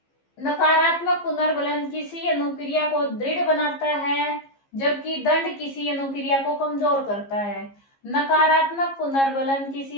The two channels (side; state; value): right; late; 15 ms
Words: नकारात्मक पुनर्बलन किसी अनुक्रिया को दृढ़ बनाता है, जबकि दंड किसी अनुक्रिया को कमजोर करता है। नकारात्मक पुनर्बलन किसी